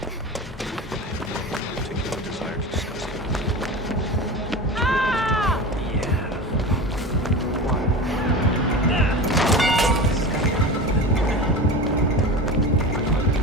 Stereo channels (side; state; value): both; normal; correlation 0.29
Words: Particular desire to discuss it. Yeah. Why?